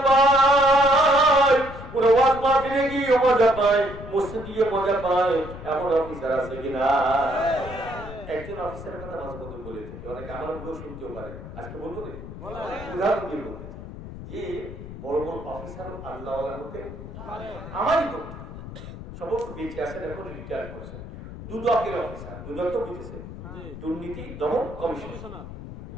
পায়, ওরা ওয়াজ মাহফিলে গিয়ে মজা পায়, মসজিদে গিয়ে মজা পায়। এমন অফিসার আছে কিনা? একজন অফিসারের কথা মাঝপথে বলে থাকে, অনেকে আমার মুখেও শুনতেও পারে। আজকে বলবো উদাহরণ দিয়ে বলতে যে বড় বড় অফিসার আল্লাহওয়ালা হতে আমারই বন্ধু, সমস্ত বেঁচে আছেন, এখন রিটায়ার করেছেন, দুদকের অফিসার। দুদক তো বুঝেছে, দুর্নীতি দমন কমিশন।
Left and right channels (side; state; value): left; noise; rumble, 12 dB below the sound